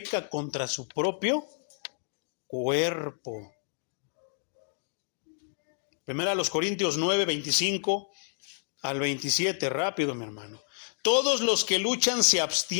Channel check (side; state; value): right; silent; digital silence